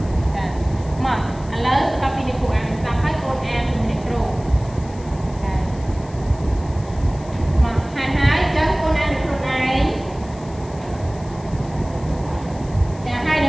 ចាមកឥឡូវបន្តពីលោកគ្រូអានស្ដាប់ហើយកូនអានជាមួយអ្នកគ្រូចាមកហើយចឹងកូនអានខ្លួនឯងចាហើយន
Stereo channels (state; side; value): noise; left; hiss, 23 dB below the sound